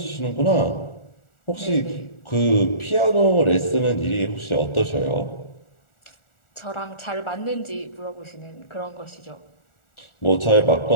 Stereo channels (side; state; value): right; late; 1.4 ms